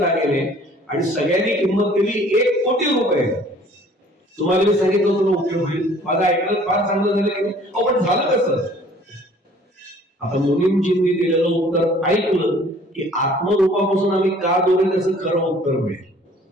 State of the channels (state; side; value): normal; both; correlation 0.54